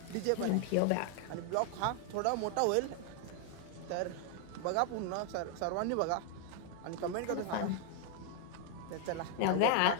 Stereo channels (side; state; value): both; different; correlation 0.00